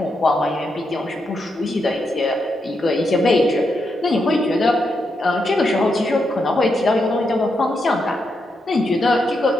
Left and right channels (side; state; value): both; normal; correlation 0.83